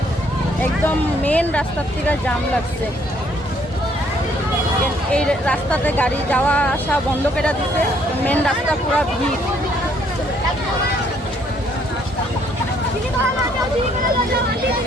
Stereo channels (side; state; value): both; normal; correlation 0.66